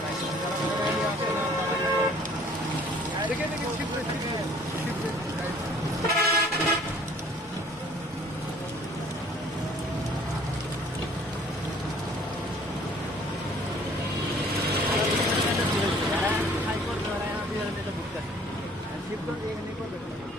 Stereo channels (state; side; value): normal; both; correlation 0.55